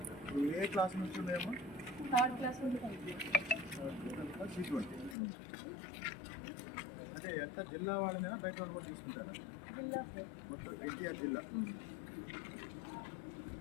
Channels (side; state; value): right; drops out; at 5.2 s